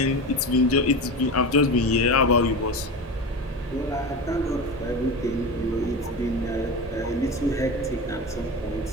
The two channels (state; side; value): normal; both; correlation 0.25